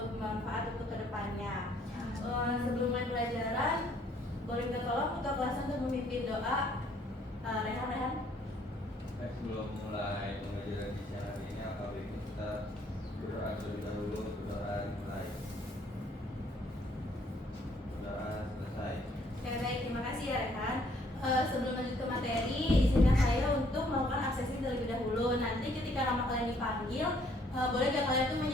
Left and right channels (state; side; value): normal; both; correlation 0.64